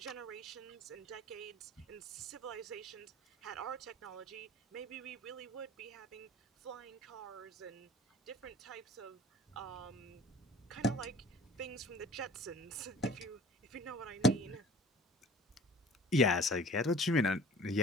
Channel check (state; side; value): normal; both; correlation 0.47